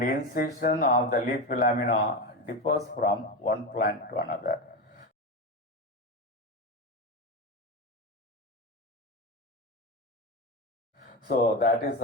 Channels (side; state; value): both; normal; correlation 0.18